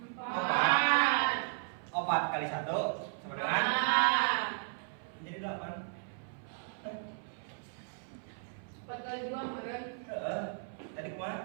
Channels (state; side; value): silent; left; 54 dB below the other